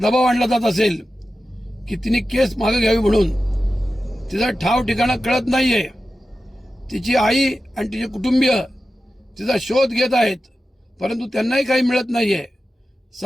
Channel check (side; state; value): both; normal; correlation 0.93